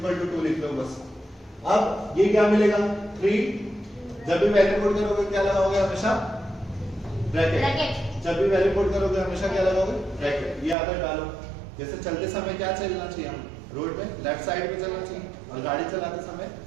to 2 लिख लो बस। अब ये क्या मिलेगा 3, जब भी वैल्यू पुट करोगे क्या लगाओगे हमेशा ब्रैकेट, जब भी वैल्यू पुट करोगे हमेशा क्या लगाओगे ब्रैकेट। ये आदत डालो, जैसे चलते समय क्या चलना चाहिए हम रोड पे लेफ्ट साइड पे चलना चाहिए, और गाड़ी चलाते समय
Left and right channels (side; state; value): left; drops out; at 10.8 s